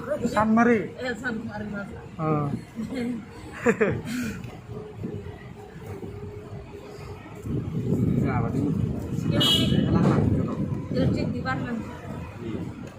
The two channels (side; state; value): both; identical; correlation 1.00